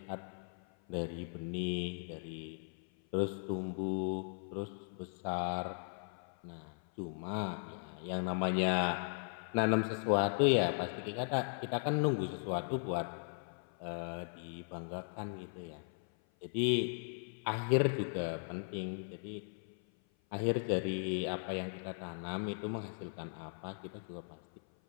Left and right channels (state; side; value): silent; right; 53 dB below the other